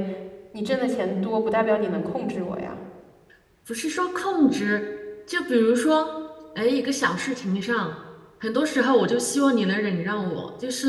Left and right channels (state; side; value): identical; both; correlation 1.00